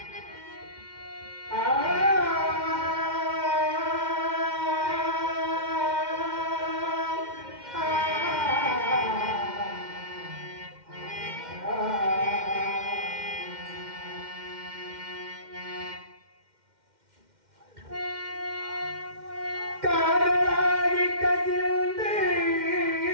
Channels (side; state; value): left; late; 2.1 ms